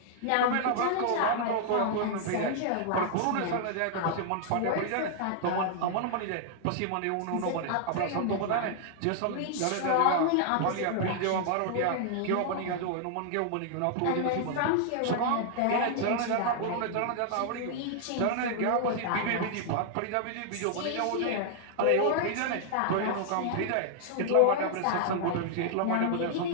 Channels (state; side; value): different; both; correlation -0.01